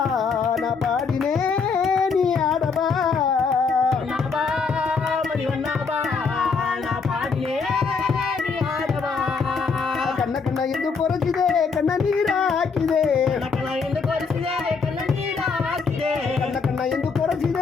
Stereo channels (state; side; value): quieter; right; 5.1 dB